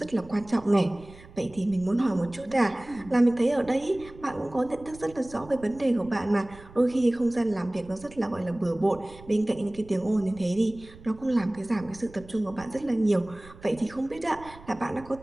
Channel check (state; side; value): noise; right; rumble, 20 dB below the sound